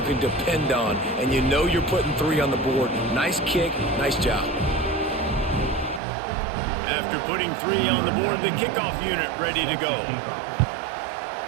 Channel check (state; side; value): drops out; left; at 6.0 s